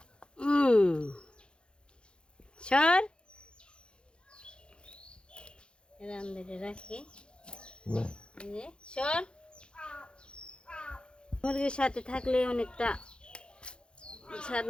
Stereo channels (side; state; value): right; late; 0.053 ms